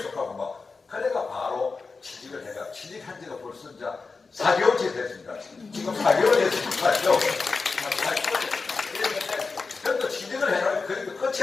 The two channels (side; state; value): right; quieter; 4.3 dB